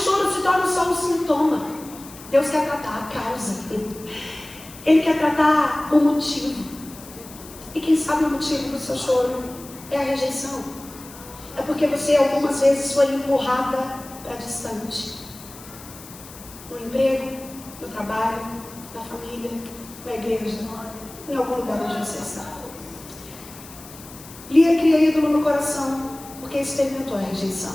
se torna só um sintoma. Deus quer tratar a causa. Ele quer tratar o motivo. E quem sabe o motivo do seu choro é a rejeição. É porque você algumas vezes foi empurrada para distante. No emprego, no trabalho, na família, na igreja, em algum lugar onde você está. Lia cria ídolo no coração porque experimentou a rejeição.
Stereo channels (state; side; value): noise; left; hiss, 18 dB below the sound